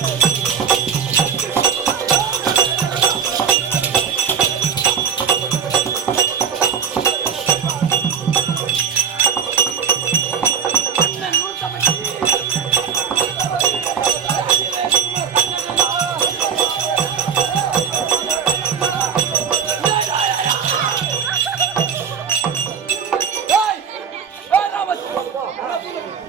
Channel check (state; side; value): quieter; left; 7.2 dB